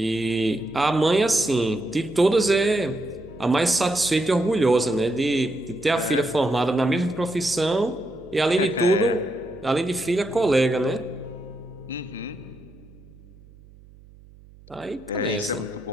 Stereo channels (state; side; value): noise; right; hum, 24 dB below the sound